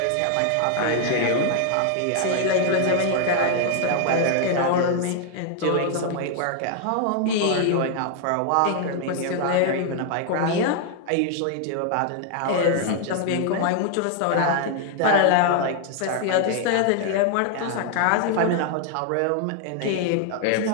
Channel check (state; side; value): different; both; correlation 0.00